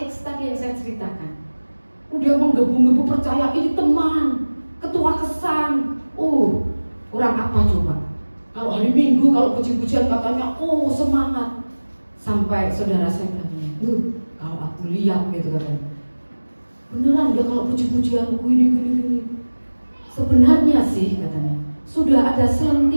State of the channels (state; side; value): inverted; both; correlation -1.00